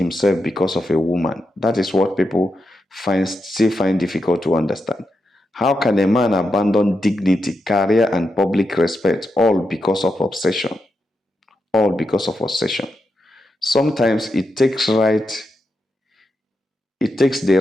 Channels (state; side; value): normal; both; correlation 0.86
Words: because of a woman? That is what people still find difficult to understand. How can a man abandon dignity, career, and public respect all because of obsession? All because of obsession. Sometimes it takes the